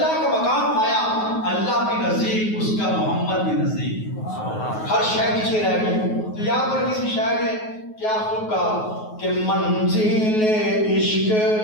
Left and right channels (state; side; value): late; right; 9.4 ms